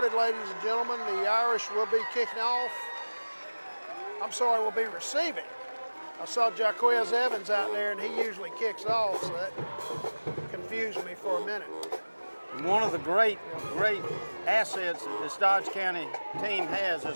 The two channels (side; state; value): both; inverted; correlation -1.00